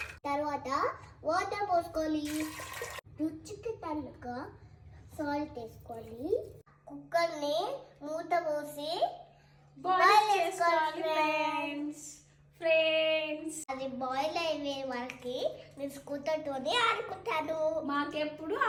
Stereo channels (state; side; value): identical; both; correlation 1.00